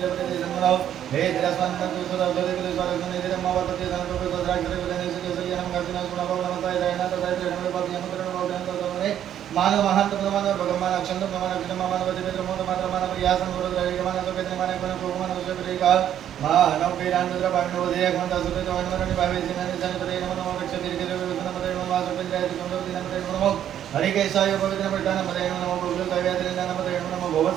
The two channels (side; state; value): left; quieter; 10.4 dB